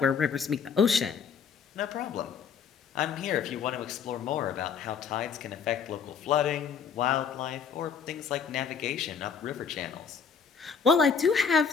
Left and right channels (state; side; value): quieter; right; 6.5 dB